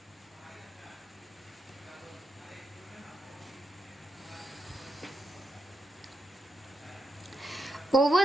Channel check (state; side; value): normal; both; correlation 0.84